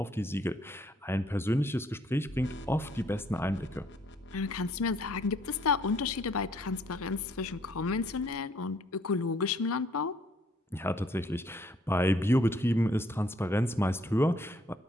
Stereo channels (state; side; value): normal; both; correlation 0.65